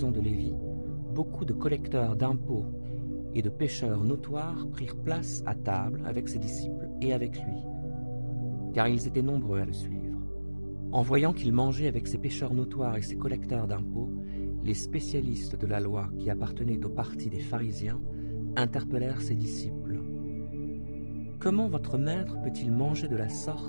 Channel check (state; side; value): inverted; both; correlation -1.00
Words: de Lévi, beaucoup de collecteurs d'impôts et de pécheurs notoires prirent place à table avec ses disciples et avec lui, car ils étaient nombreux à le suivre. En voyant qu'il mangeait avec ces pécheurs notoires et ces collecteurs d'impôts, les spécialistes de la loi qui appartenaient au parti des pharisiens interpellèrent ses disciples. « Comment votre maître peut-il manger de la